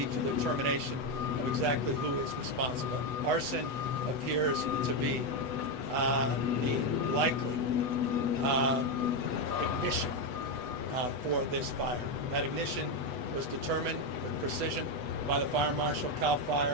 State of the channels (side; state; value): left; late; 8.1 ms